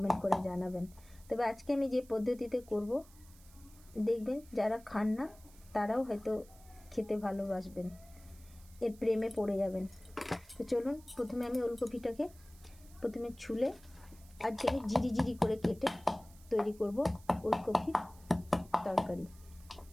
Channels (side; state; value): right; noise; hiss, 25 dB below the sound